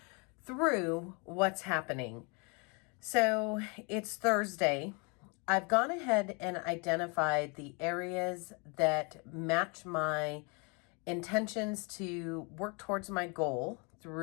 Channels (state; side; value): quieter; right; 32.5 dB